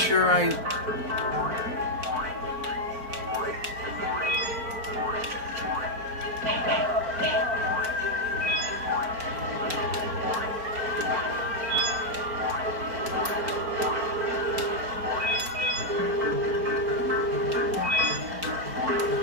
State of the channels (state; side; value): late; left; 4.4 ms